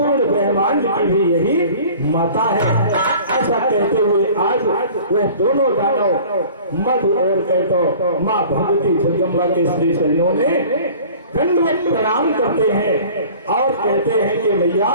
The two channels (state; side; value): inverted; both; correlation -0.46